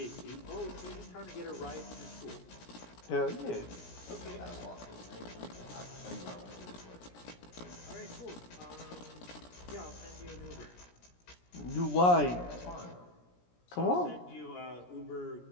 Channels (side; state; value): right; late; 17 ms